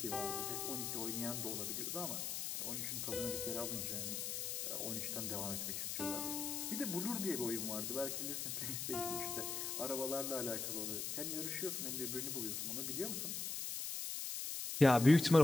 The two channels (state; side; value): noise; left; hiss, 3 dB below the sound